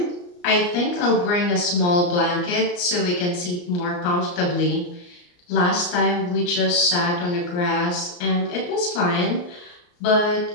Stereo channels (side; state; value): right; late; 34 ms